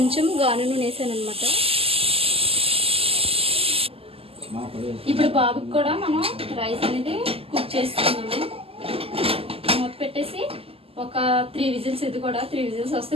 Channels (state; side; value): late; left; 0.28 ms